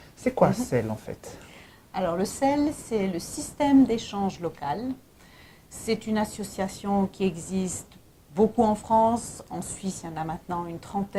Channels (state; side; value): identical; both; correlation 1.00